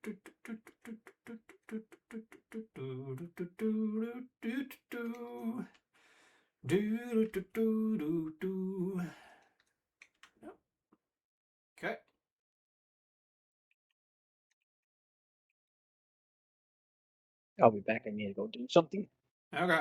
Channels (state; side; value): identical; both; correlation 1.00